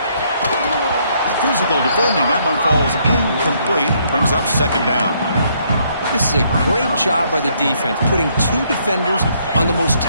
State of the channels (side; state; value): both; inverted; correlation -0.70